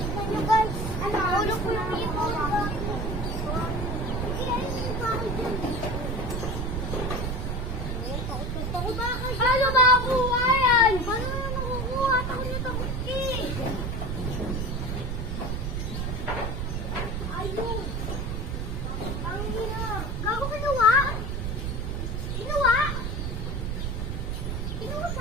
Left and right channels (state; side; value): noise; right; rumble, 2 dB below the sound